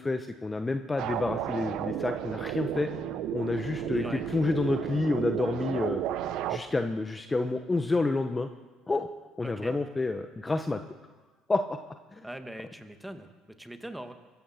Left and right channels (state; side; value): normal; both; correlation 0.81